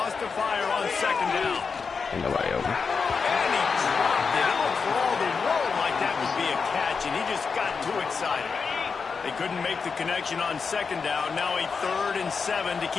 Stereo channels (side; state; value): right; quieter; 5.3 dB